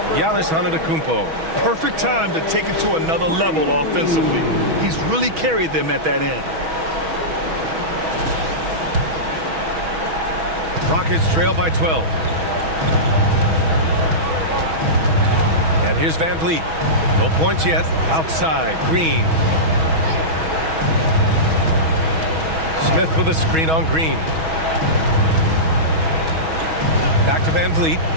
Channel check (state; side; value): late; left; 6.2 ms